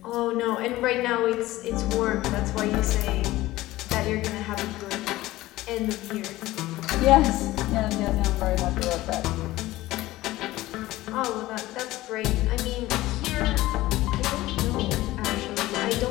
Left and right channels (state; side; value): quieter; right; 17.3 dB